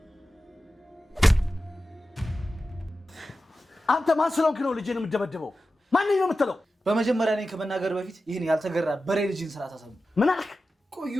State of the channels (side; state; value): both; normal; correlation 0.93